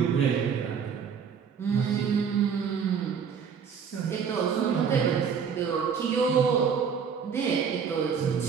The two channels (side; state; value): left; quieter; 6.8 dB